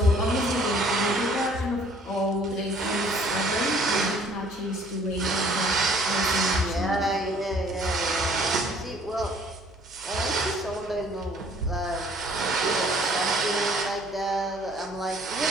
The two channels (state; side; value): normal; both; correlation 0.57